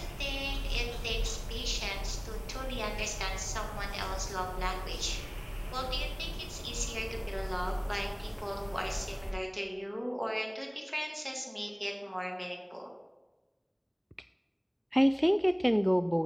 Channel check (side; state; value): both; identical; correlation 1.00